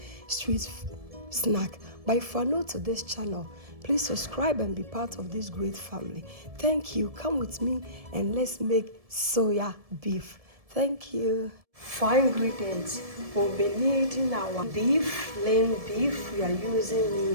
street snack. But if you are new to this channel, please subscribe and be part of this great family. Thank you. Come with me and let's make soya beef. Thank you. For ingredients, we'll be needing our beef, lean beef. We are using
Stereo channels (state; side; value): late; left; 1.7 ms